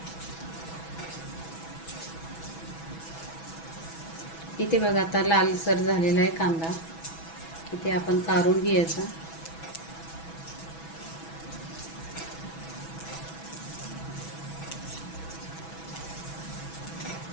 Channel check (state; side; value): late; right; 6.1 ms